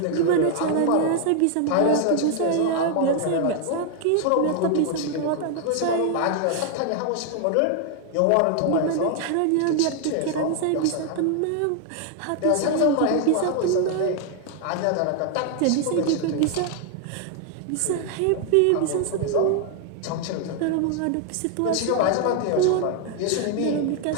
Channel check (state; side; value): different; both; correlation 0.00